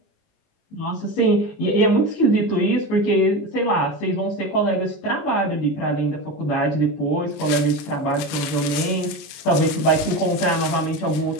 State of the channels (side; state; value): right; late; 19 ms